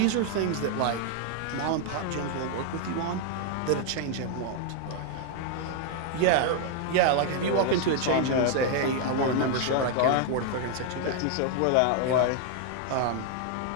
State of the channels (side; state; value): both; different; correlation 0.00